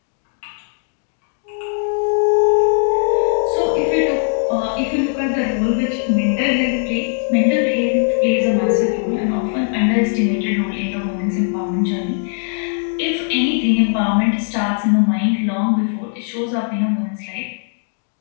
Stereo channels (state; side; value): silent; right; 63 dB below the other